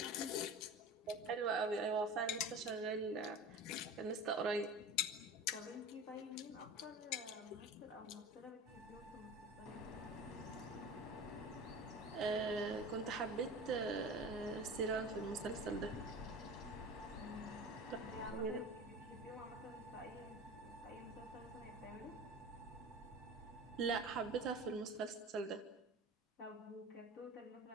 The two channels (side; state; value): both; normal; correlation 0.34